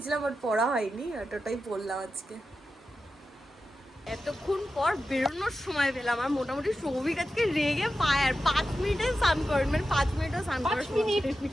বাট পরা হয়নি, ওটাই পরলাম আজকে। এতক্ষণ পর বেরোনোর সময় পেলাম, আর মোটামুটি সৌভিক আজকে রেগে পায়, আর 5 মিনিটে স্নান করেন, মানে 5 মিনিটও স্নান করার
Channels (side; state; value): both; normal; correlation 0.91